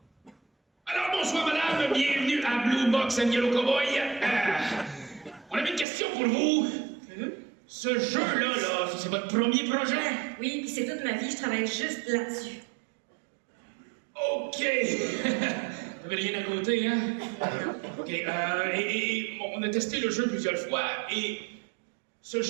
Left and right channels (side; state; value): left; drops out; at 5.9 s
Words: Alors bonsoir madame, bienvenue à Blue Box and Yellow Cowboy. On avait une question pour vous. Ce jeu-là, c'est votre premier projet? Oui, puis c'est toute ma vie, je travaille juste là-dessus. OK. Vous n'avez rien à côté, hein? OK. On a testé le jeu plusieurs fois, et ce